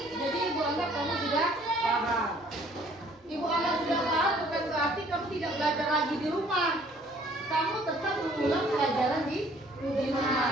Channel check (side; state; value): both; normal; correlation 0.58